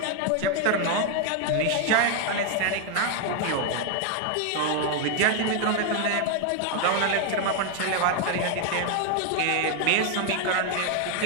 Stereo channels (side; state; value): both; different; correlation 0.00